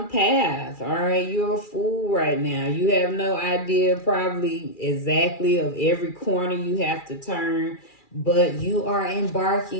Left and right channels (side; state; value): right; late; 2.4 ms